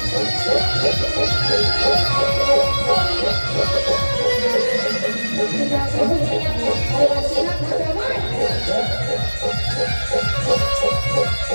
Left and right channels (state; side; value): inverted; both; correlation -1.00